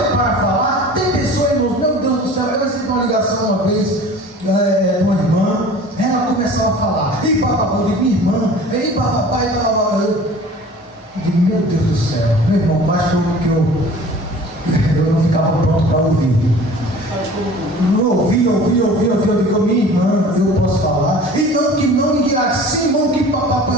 falar, tem pessoas, irmãos, meu Deus do céu, eu recebi uma ligação uma vez de uma irmã, ela começava a falar, e papai, de minha irmã, e papai, eu digo, meu Deus do céu, meu irmão, basta que eu não ficava pronto para ouvir. Ouvi, eu digo, minha irmã, eu posso falar, e assim, irmão, que papai,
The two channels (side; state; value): both; normal; correlation 0.44